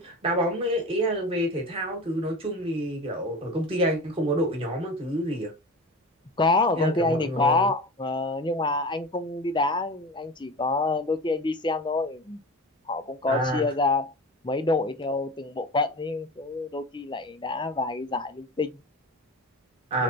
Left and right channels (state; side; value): normal; both; correlation 0.31